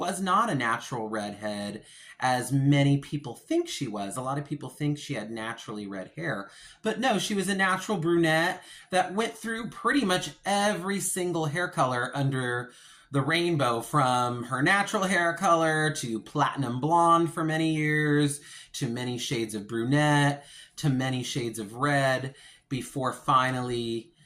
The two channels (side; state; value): both; identical; correlation 1.00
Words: not a natural redhead, as many people think she was. A lot of people think she had naturally red hair, but no, she was a natural brunette that went through pretty much every single hair color under the rainbow, from her natural hair color to platinum blonde for many years, to many shades of brunette, to many shades of red, before finally